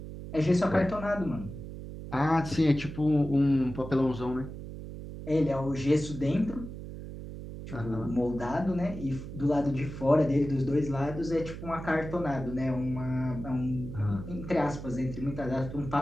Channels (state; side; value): noise; right; hum, 10 dB below the sound